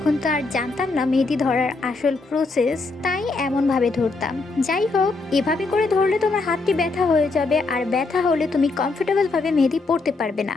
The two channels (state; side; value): quieter; right; 3.6 dB